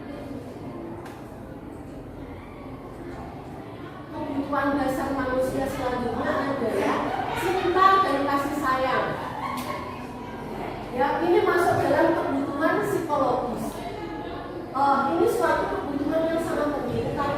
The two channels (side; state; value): both; identical; correlation 1.00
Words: kebutuhan dasar manusia selanjutnya adalah cinta dan kasih sayang. Ya, ini masuk dalam kebutuhan psikologis. Ini suatu kebutuhan yang sangat penting